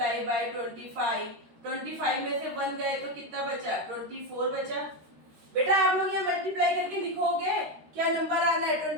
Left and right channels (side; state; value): left; late; 13 ms